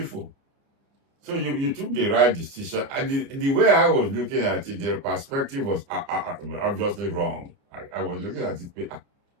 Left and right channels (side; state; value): left; late; 29 ms